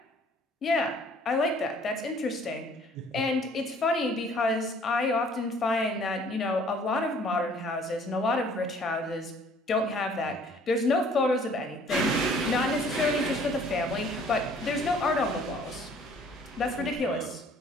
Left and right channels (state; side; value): normal; both; correlation 0.56